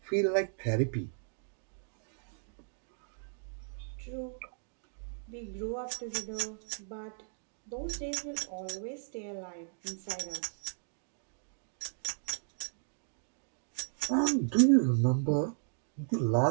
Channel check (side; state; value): left; silent; digital silence